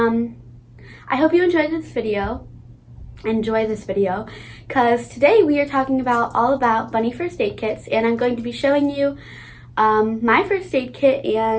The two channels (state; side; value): identical; both; correlation 1.00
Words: I hope you enjoy this video, because today we are talking all about bunny first aid kits, and I'm going to be showing you my first aid kit